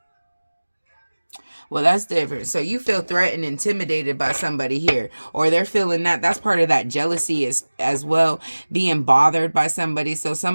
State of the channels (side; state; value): both; inverted; correlation -1.00